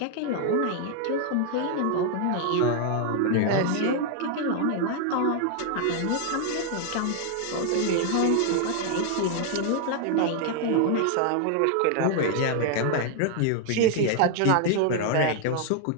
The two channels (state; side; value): different; both; correlation 0.00